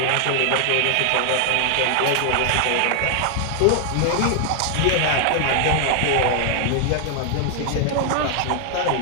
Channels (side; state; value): both; different; correlation 0.00